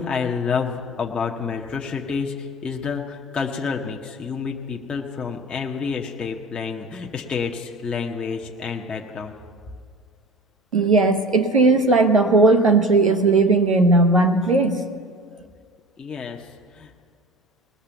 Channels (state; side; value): normal; both; correlation 0.38